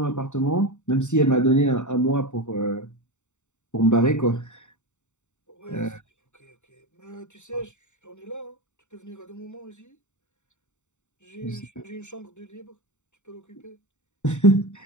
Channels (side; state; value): right; late; 0.84 ms